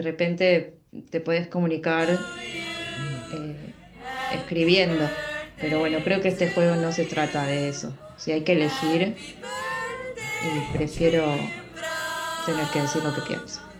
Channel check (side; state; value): both; identical; correlation 1.00